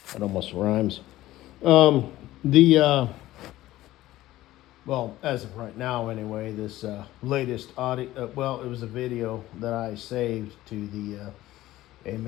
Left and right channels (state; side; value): quieter; right; 15.8 dB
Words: It almost rhymes. The well, as of right now, anyway, this latest audio. Well, it was a video that I saved to the